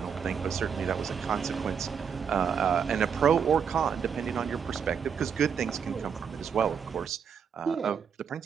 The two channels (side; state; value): left; quieter; 7.1 dB